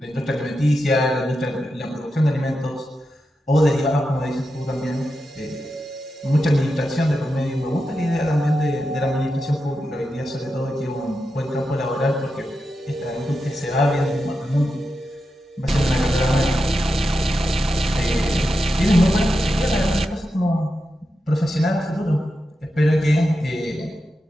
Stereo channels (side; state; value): both; normal; correlation 0.89